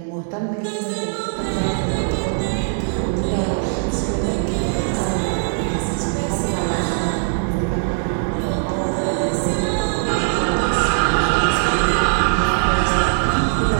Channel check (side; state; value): left; silent; digital silence